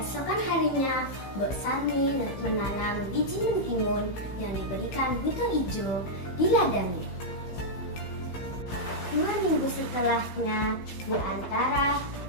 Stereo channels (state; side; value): late; right; 15 ms